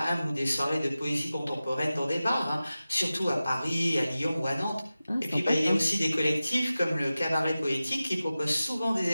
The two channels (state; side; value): inverted; both; correlation -0.95